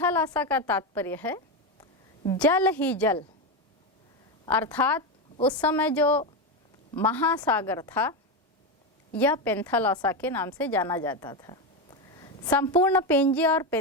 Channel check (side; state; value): both; normal; correlation 0.12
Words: का तात्पर्य है जल ही जल, अर्थात उस समय जो महासागर था यह पैंथालॉसा के नाम से जाना जाता था। संपूर्ण पेंजिया और